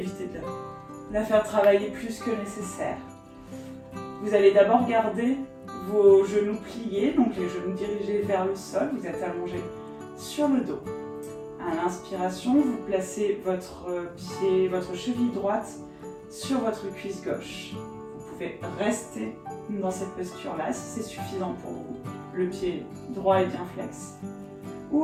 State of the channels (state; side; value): identical; both; correlation 1.00